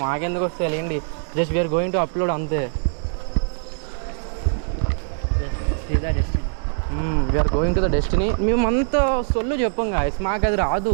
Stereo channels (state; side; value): silent; left; digital silence